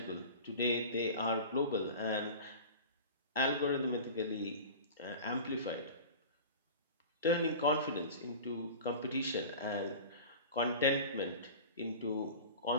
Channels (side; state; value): both; inverted; correlation -0.35